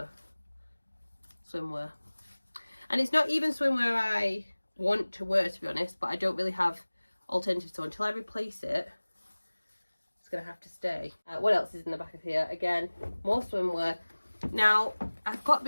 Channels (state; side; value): inverted; both; correlation -1.00